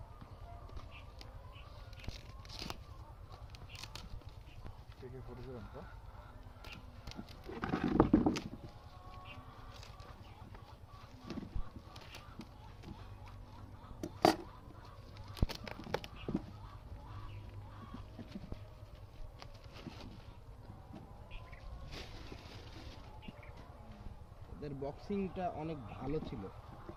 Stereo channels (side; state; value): both; identical; correlation 1.00